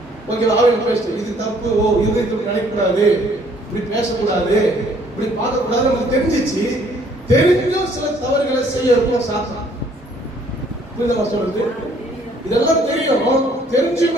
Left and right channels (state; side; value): normal; both; correlation 0.61